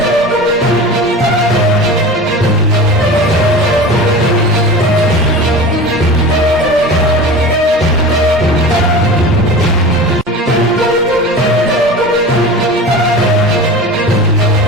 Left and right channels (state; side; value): normal; both; correlation 0.33